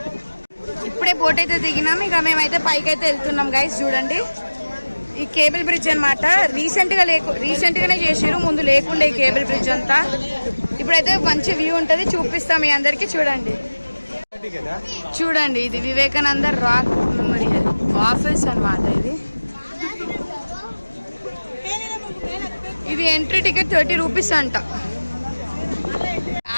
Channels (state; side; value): inverted; both; correlation -1.00